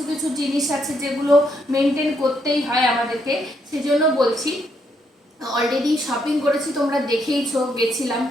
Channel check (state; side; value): normal; both; correlation 0.75